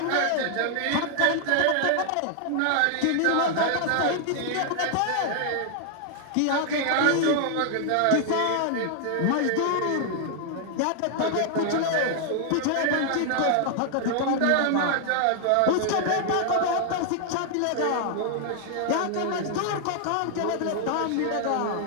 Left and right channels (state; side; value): different; both; correlation 0.00